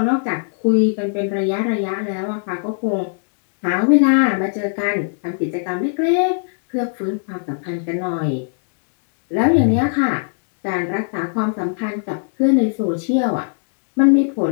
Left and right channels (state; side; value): silent; right; digital silence